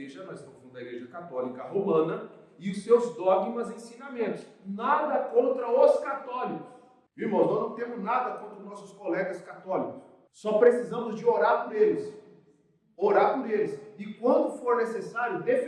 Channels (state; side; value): identical; both; correlation 1.00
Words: nós estamos falando da Igreja Católica Romana, e os seus dogmas e ensinamentos. Nada contra os católicos. Irmãos, nós não temos nada contra os nossos colegas católicos. Só precisamos de orar por eles. Orar por eles. E quando for necessário,